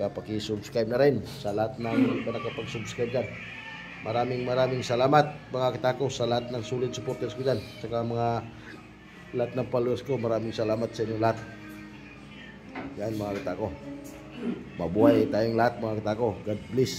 pakisubscribe na rin sa lahat ng hindi pa nakapag-subscribe dyan. Maraming salamat mga kitako sa lahat ng solid supporters ko dyan. Saka lahat ng followers ko, maraming salamat sa inyo lahat. Yan mga kitako. Mabuhay tayong lahat mga kitako. God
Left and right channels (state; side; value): identical; both; correlation 1.00